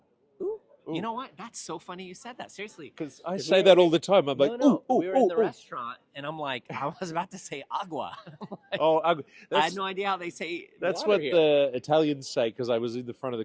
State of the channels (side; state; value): both; identical; correlation 1.00